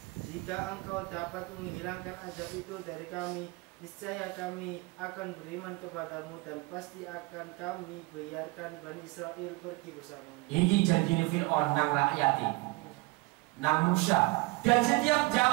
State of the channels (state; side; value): quieter; left; 23.4 dB